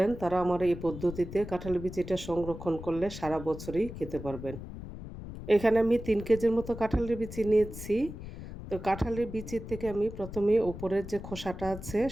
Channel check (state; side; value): noise; left; rumble, 11 dB below the sound